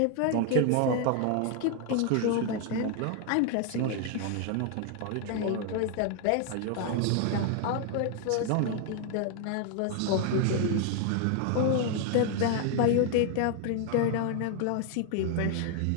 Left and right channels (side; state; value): both; different; correlation 0.00